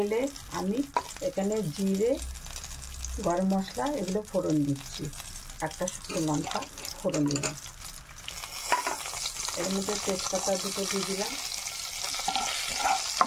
আমি এখানে জিরে, গরম মশলা এগুলো ফোড়ন দিচ্ছি। একটা শুকনো লঙ্কা ফোড়ন দিলাম, এর মধ্যে তেজপাতা দুটো দিয়ে দিলাম।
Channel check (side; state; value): both; identical; correlation 1.00